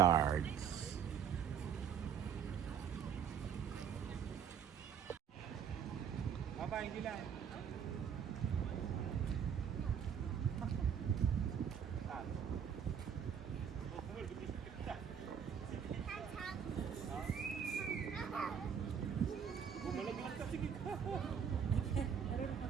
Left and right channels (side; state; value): left; quieter; 7.8 dB